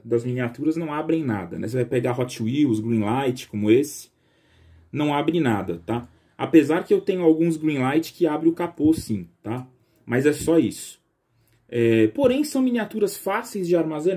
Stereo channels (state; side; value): identical; both; correlation 1.00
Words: das miniaturas não abrem nada, né? Você vai pegar Hot Wheels, Greenlight, como esse, não abre nada, tá? Apesar que eu tenho alguns Greenlight que abre o capô sim, tá? Mas é só isso. Porém são miniaturas fáceis de